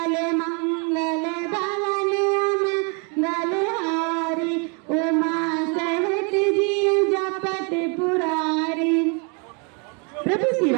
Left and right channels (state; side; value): quieter; left; 35.0 dB